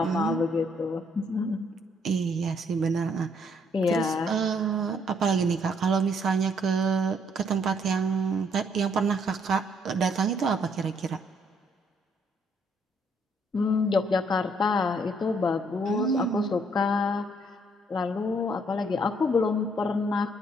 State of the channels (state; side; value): normal; both; correlation 0.68